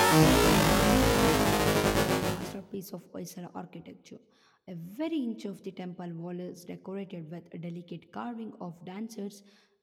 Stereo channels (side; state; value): both; identical; correlation 1.00